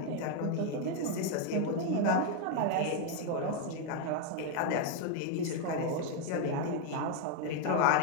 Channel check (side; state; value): both; different; correlation 0.01